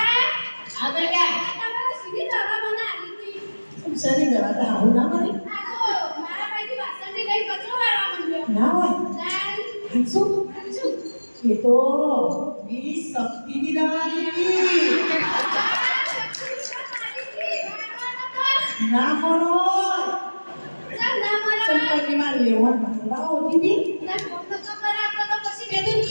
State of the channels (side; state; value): both; inverted; correlation -1.00